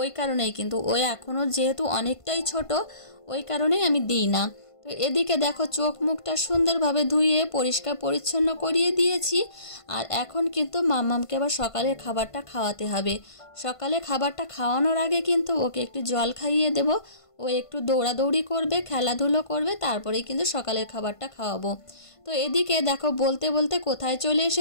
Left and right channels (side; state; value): right; late; 1.5 ms